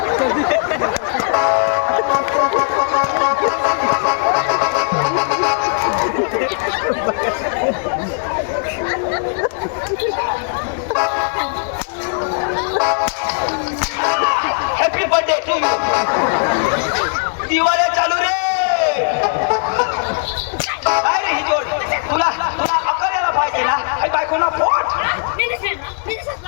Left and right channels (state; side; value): silent; right; digital silence